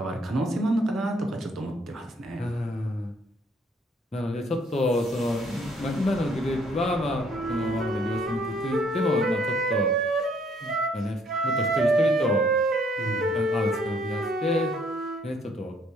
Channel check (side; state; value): both; normal; correlation 0.65